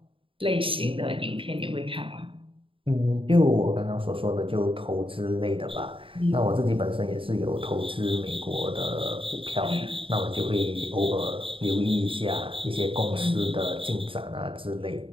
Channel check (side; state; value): left; late; 0.26 ms